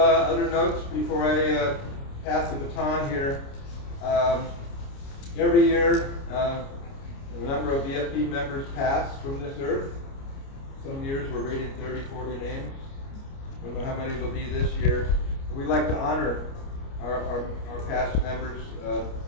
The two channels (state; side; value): late; right; 29 ms